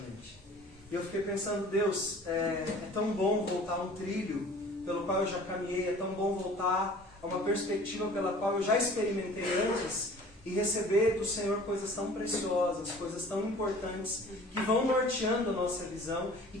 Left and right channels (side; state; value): both; normal; correlation 0.47